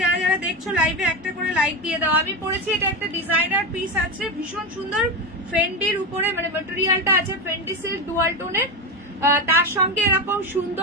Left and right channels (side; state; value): both; normal; correlation 0.16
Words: যারা যারা দেখছো লাইভে একটা করে লাইক দিয়ে দাও। আমি পরেছি এটা একটা ডিজাইনার পিস আছে, ভীষণ সুন্দর, ফেন্ডির উপরে মানে ম্যাটেরিয়ালটা আছে ফেন্ডি সিল্ক ডুয়াল টোনের, তার সঙ্গে এরকম